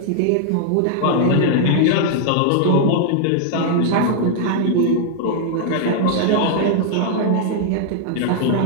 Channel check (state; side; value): different; both; correlation 0.00